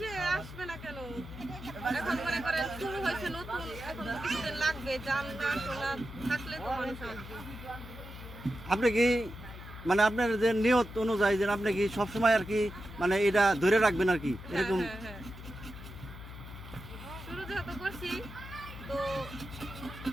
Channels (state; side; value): noise; left; hum, 13 dB below the sound